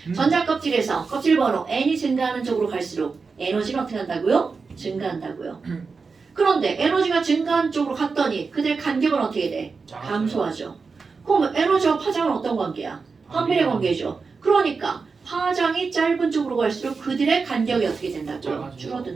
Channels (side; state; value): left; quieter; 4.7 dB